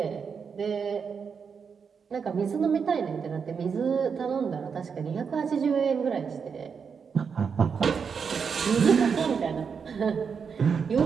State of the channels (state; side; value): quieter; left; 6.2 dB